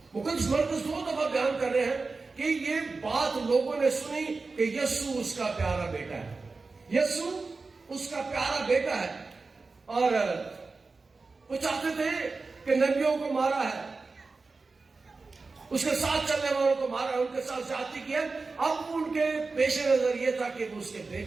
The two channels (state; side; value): quieter; left; 4.0 dB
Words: مقدس مرکز 2 دفعہ بیان کر رہے ہیں کہ یہ بات لوگوں نے سنی کہ یسوع اس کا پیارا بیٹا ہے، یسوع اس کا پیارا بیٹا ہے، اور وہ چاہتے تھے کہ نبیوں کو مارا ہے، اس کے ساتھ چلنے والوں کو مارا ہے، ان کے ساتھ زیادتی کی ہے۔ اب ان کے پیش نظر یہ تھا کہ وہ اس کے